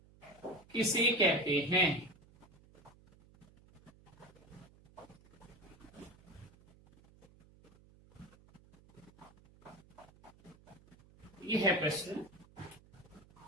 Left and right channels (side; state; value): right; noise; hum, 25 dB below the sound